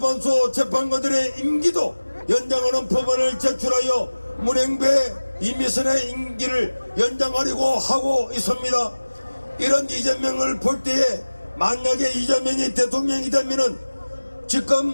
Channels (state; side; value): inverted; both; correlation -1.00